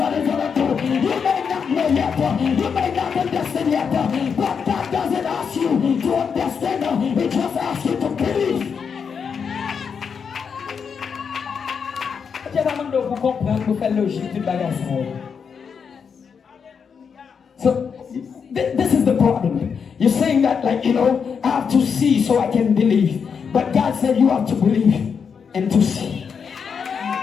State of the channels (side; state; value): right; quieter; 6.4 dB